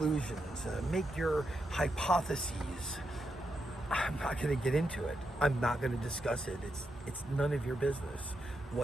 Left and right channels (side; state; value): both; normal; correlation 0.84